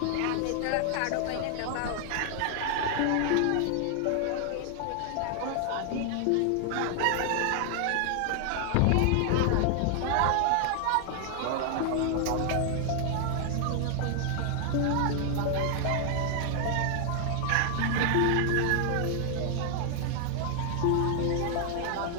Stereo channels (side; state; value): both; different; correlation 0.00